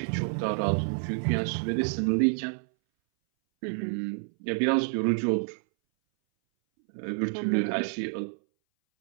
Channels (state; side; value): silent; left; 59 dB below the other